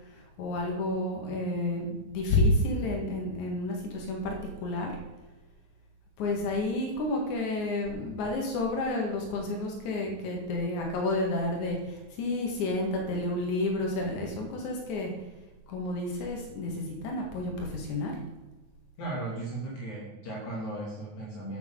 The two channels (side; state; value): right; late; 9.5 ms